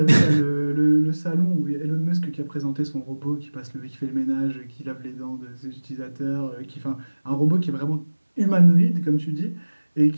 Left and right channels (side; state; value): both; inverted; correlation -1.00